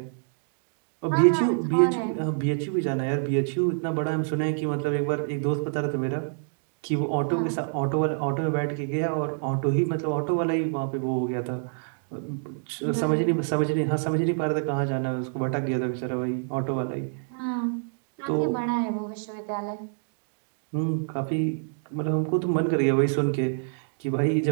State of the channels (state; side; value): silent; left; digital silence